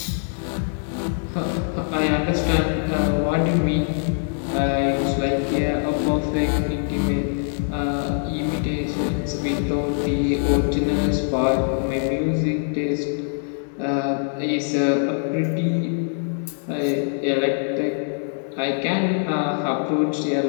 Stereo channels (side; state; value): right; silent; 63 dB below the other